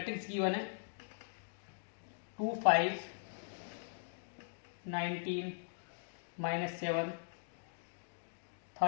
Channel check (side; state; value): right; silent; digital silence